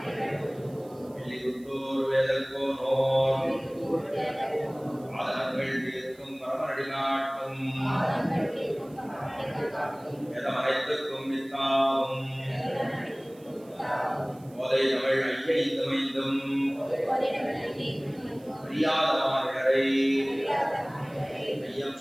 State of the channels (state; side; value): noise; right; hiss, 27 dB below the sound